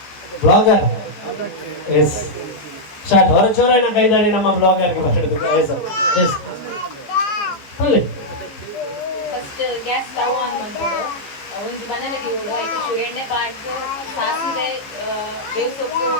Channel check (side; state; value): right; late; 14 ms